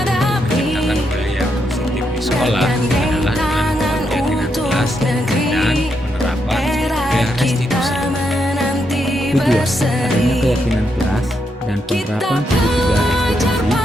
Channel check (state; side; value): normal; both; correlation 0.80